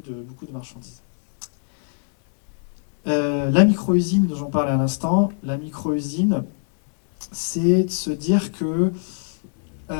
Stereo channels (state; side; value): silent; right; digital silence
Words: de marchandises. La micro-usine dont j'en parlais à l'instant, la micro-usine, c'est de se dire que